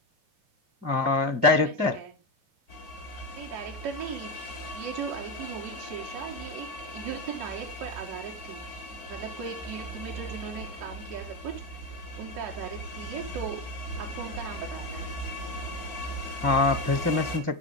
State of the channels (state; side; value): late; left; 2.3 ms